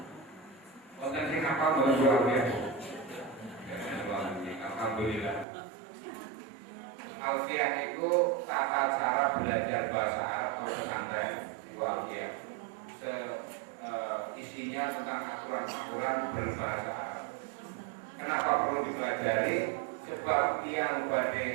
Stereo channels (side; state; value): left; drops out; at 5.5 s